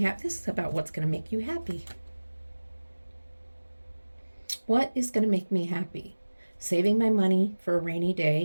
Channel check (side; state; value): both; inverted; correlation -1.00